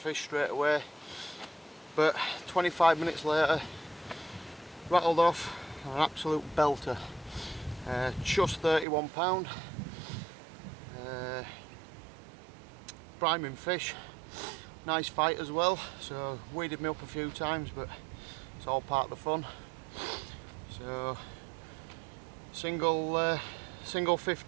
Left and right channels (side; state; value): left; drops out; at 8.8 s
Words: straight away. But 25 minutes later, rattled off an absolute belter. Just £31. Priming fish, nice fight as well, so weeded me up a few times, but it's all part of the fun. So single